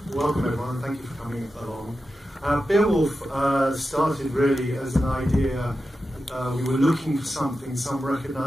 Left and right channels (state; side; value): normal; both; correlation 0.91